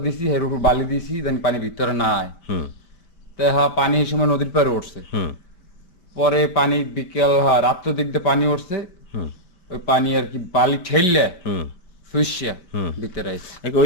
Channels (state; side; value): late; right; 5.2 ms